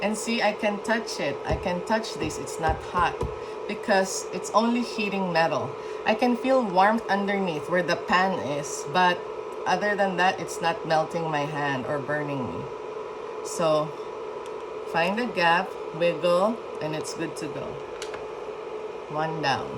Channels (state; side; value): identical; both; correlation 1.00